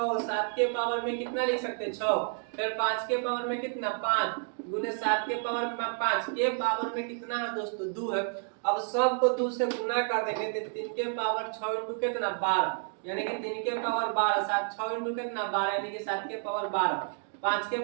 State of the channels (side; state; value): left; silent; 58 dB below the other